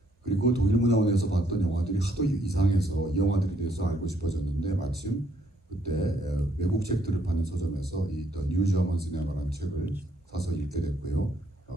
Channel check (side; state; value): both; normal; correlation 0.70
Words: 그리고 독일문화원에서 봤던 영화들이 하도 이상해서 이 영화들에 대해서 알고 싶어졌는데 마침 그때 외국 책들을 파는 서점에서 이 The New German Cinema라는 책을 사서 읽게 됐고요.